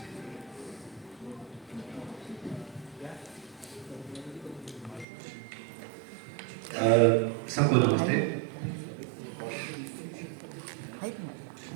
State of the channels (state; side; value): drops out; left; at 5.1 s